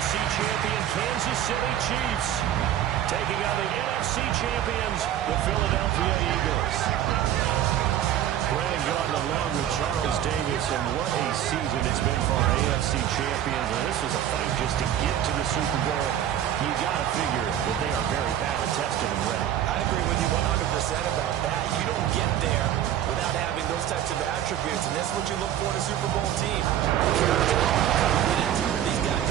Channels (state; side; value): quieter; left; 11.1 dB